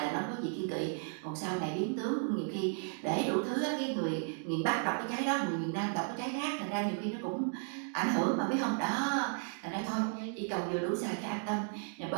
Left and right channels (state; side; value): silent; left; 55 dB below the other